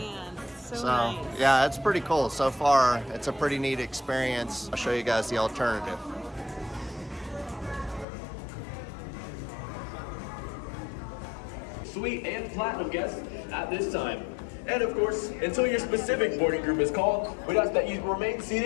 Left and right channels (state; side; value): drops out; right; at 8.1 s